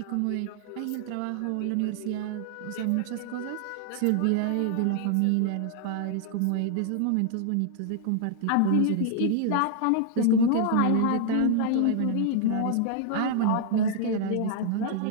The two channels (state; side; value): different; both; correlation 0.00